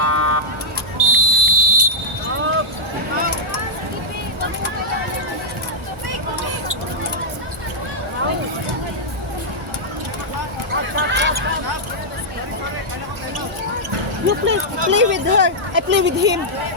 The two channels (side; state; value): both; normal; correlation -0.07